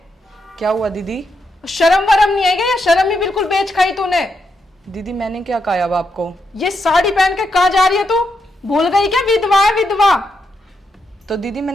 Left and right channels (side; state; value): both; normal; correlation 0.82